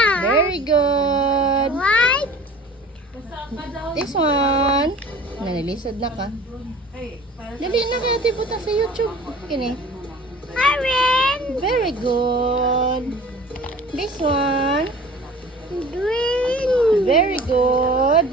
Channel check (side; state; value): both; normal; correlation 0.44